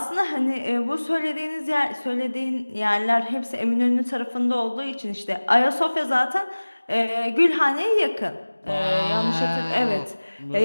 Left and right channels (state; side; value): inverted; both; correlation -1.00